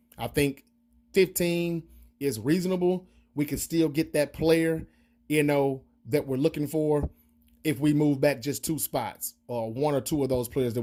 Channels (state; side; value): identical; both; correlation 1.00